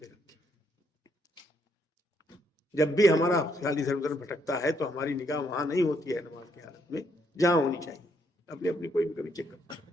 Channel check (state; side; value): normal; both; correlation 0.73